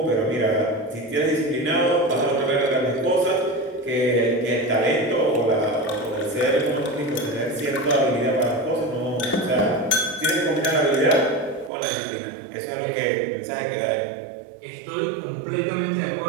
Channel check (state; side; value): drops out; left; at 11.7 s